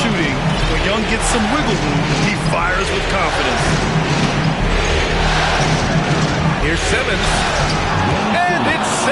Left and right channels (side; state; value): both; identical; correlation 1.00